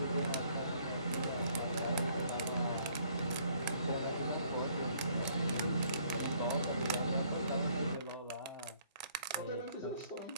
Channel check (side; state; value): both; inverted; correlation -0.63